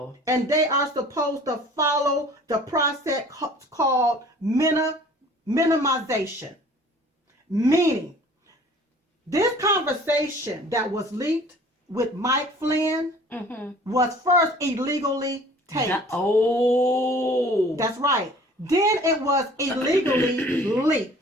And they are supposed to follow the process called minimization. Meaning, this conversation that was leaked with Mike Flynn was first illegally taped. Oh. That's right. Then it was illegally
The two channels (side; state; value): both; normal; correlation 0.49